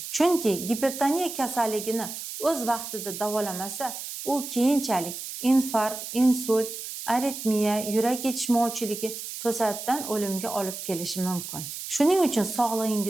Chunki gipertoniya kasalligini o'z vaqtida davolamasa, u keyinchalik infarkt, insult, aritmiya, yurak yetishmovchiligi to'satdan o'limga olib kelishi mumkin. Shuning uchun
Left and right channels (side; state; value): right; noise; hiss, 8 dB below the sound